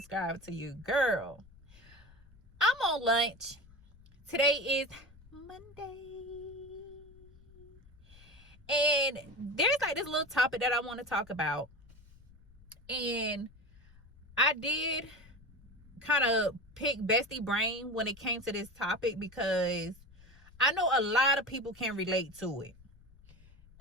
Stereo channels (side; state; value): left; noise; rumble, 24 dB below the sound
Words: to your girl. I'm on lunch. Today is Monday, and there's like this little topic that I want to talk about, and I did kind of pick bestie brain when it came to this topic because I know a lot of people can relate to it.